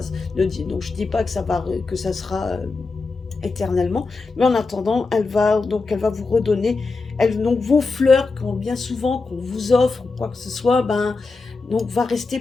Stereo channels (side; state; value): right; quieter; 4.0 dB